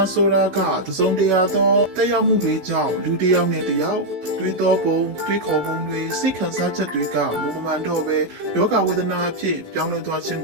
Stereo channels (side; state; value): left; late; 16 ms